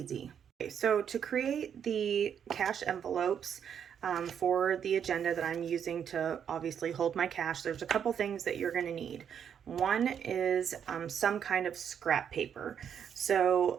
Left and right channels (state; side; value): quieter; left; 8.2 dB